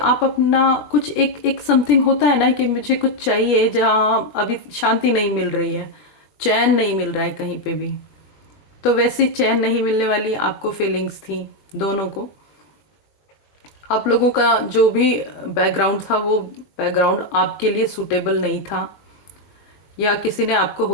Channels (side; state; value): right; late; 21 ms